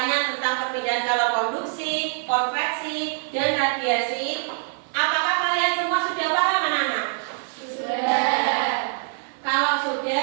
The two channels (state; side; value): silent; left; 56 dB below the other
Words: tentang perpindahan kalor konduksi, konveksi, dan radiasi. Apakah kalian semua sudah paham anak-anak? Sudah. Kalau